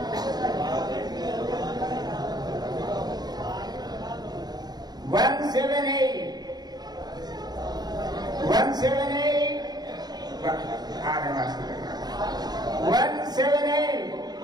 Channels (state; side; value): late; left; 0.20 ms